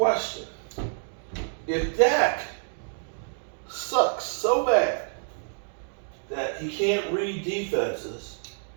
If Dak sucks so bad that he can't read defenses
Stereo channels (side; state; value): left; silent; 60 dB below the other